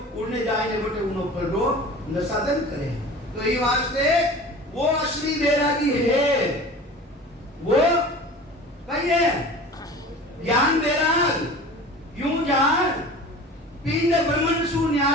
उड़ने जाए ने बटे उनो पर रो नसादन करे। तो ये वास्ते वो असली बैरागी है, वो कहिए ज्ञान बैराग, यूं जान पिंड ब्रह्मन सु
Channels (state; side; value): normal; both; correlation 0.39